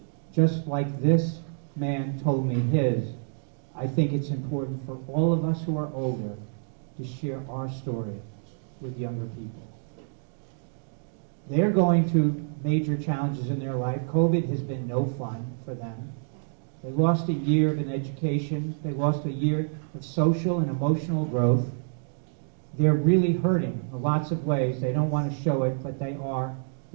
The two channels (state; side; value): silent; left; digital silence